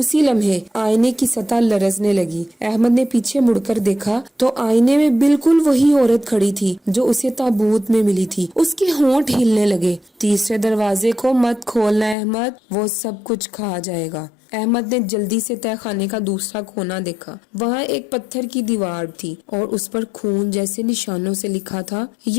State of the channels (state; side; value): drops out; right; at 12.2 s